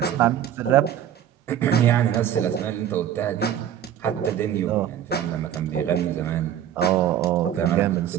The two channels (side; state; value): left; quieter; 10.2 dB